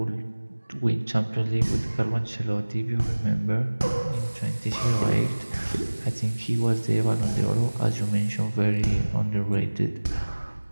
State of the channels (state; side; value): inverted; both; correlation -1.00